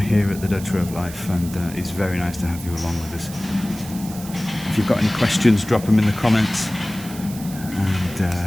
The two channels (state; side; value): noise; right; hiss, 15 dB below the sound